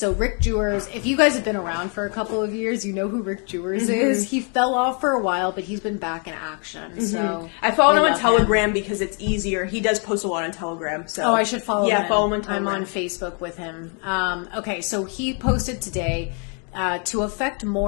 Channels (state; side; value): quieter; right; 38.8 dB